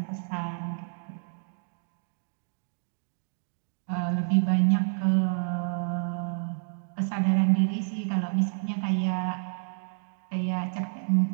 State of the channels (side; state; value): left; silent; digital silence